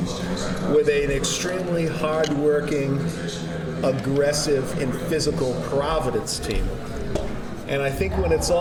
with an extremely hardworking, aggressive, and physical Providence team. And I think when it's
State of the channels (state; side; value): identical; both; correlation 1.00